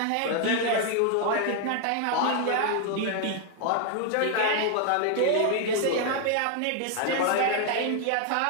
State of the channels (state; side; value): different; both; correlation 0.00